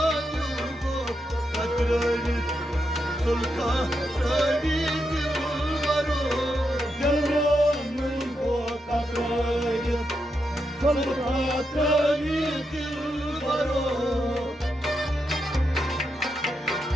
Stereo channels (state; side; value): normal; both; correlation 0.84